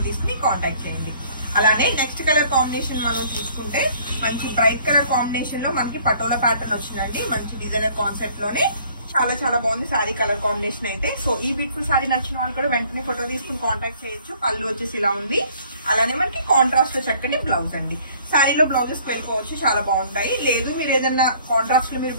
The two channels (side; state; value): both; inverted; correlation -0.57